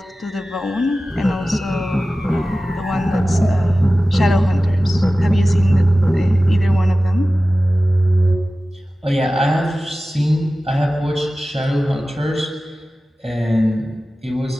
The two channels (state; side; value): normal; both; correlation 0.96